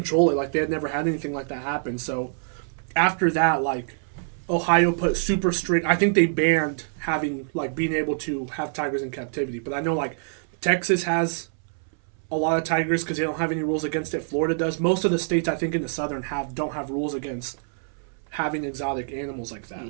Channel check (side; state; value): left; silent; 61 dB below the other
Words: it, like they had never had anything like that happen. So after that, like Ohio put super strict. I think they banned having like being able to have tigers in captivity. But I know like Texas has a lot of tigers because they don't have any rules against it. Florida does. Most of the states I think in the southern don't have rules against having exotic animals like